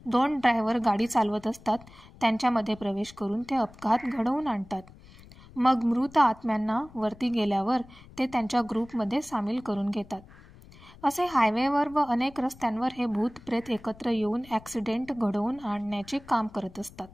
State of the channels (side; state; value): left; noise; rumble, 22 dB below the sound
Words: 2 ड्रायव्हर गाडी चालवत असतात, त्यांच्यामध्ये प्रवेश करून ते अपघात घडवून आणतात. मग मृत आत्म्यांना वरती गेल्यावर ते त्यांच्या ग्रुपमध्ये सामील करून घेतात. असे हायवेवर व अनेक रस्त्यांवर हे भूतप्रेत एकत्र येऊन ॲक्सिडेंट घडवून आणण्याचे काम करत असतात.